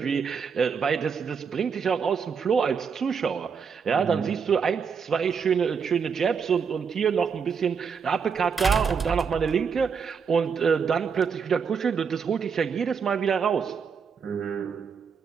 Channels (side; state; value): left; quieter; 6.2 dB